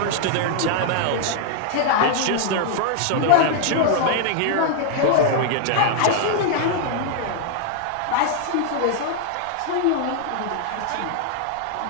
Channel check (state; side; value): different; both; correlation -0.01